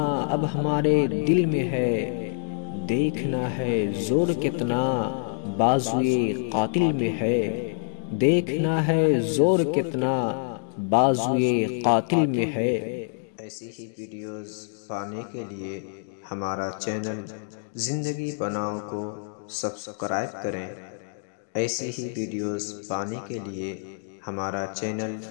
اب ہمارے دل میں ہے، دیکھنا ہے زور کتنا بازوئے قاتل میں ہے، دیکھنا ہے زور کتنا بازوئے قاتل میں ہے۔ ایسی ہی ویڈیوز پانے کے لیے ہمارا چینل زندگی بناؤ کو سبسکرائب کریں، ایسی ہی ویڈیوز پانے کے لیے ہمارا چینل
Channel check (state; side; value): silent; right; digital silence